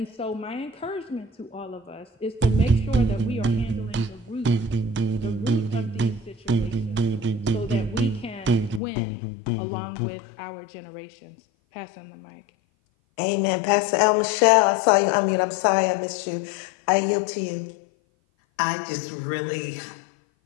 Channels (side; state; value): right; drops out; at 8.8 s